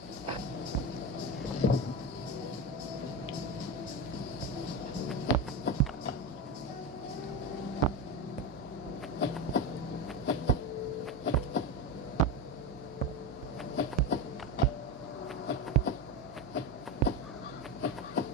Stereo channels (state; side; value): normal; both; correlation 0.18